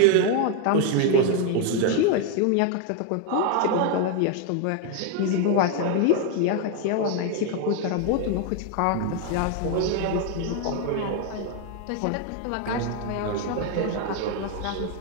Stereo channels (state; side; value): different; both; correlation 0.01